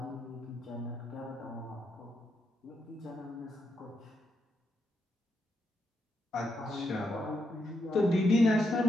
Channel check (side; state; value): both; normal; correlation 0.82